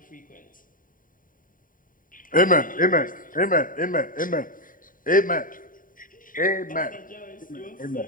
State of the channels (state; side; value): late; right; 0.40 ms